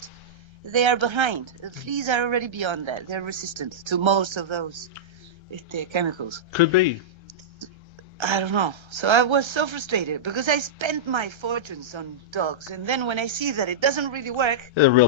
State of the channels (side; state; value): left; late; 1.3 ms